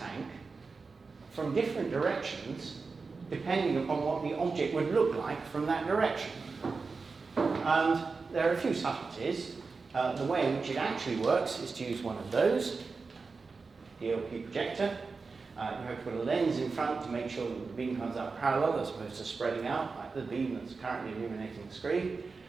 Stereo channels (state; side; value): quieter; left; 4.4 dB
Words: from different directions, depending upon what the object would look like from that direction. And there are a few subtleties. The way in which it actually works is to use one of those, the LP projector. You have to put a lens in front to make sure that the beam comes out parallel as opposed to spreading out, like the beam that's currently illuminating the screen.